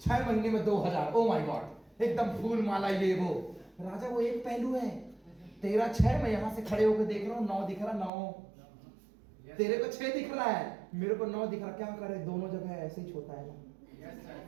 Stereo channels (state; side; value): drops out; left; at 8.1 s